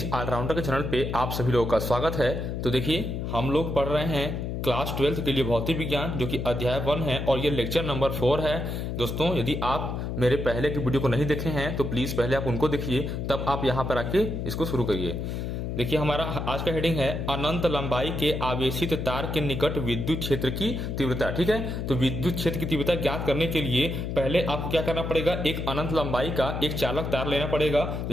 ऑलराउंडर के चैनल पे आप सभी लोगों का स्वागत है। तो देखिए, हम लोग पढ़ रहे हैं क्लास 12 के लिए भौतिक विज्ञान, जो कि अध्याय 1 है और ये लेक्चर नंबर 4 है। दोस्तों, यदि आप मेरे पहले की वीडियो को नहीं देखे हैं तो प्लीज पहले आप उनको देखिए, तब आप यहाँ पर आके इसको शुरू करिए। देखिए, हमारा आज का हेडिंग है अनंत लंबाई के आवेशित तार के निकट विद्युत क्षेत्र की तीव्रता। ठीक है, तो विद्युत क्षेत्र की तीव्रता ज्ञात करने के लिए पहले आपको क्या करना पड़ेगा, एक अनंत लंबाई का एक चालक तार लेना पड़ेगा।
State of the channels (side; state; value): left; noise; hum, 3 dB below the sound